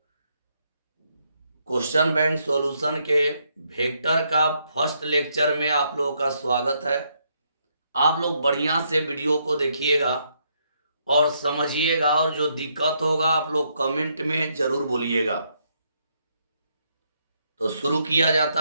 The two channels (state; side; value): inverted; both; correlation -0.75